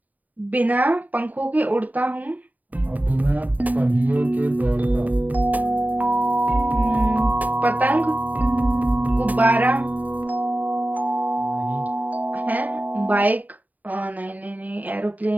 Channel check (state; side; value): late; left; 0.077 ms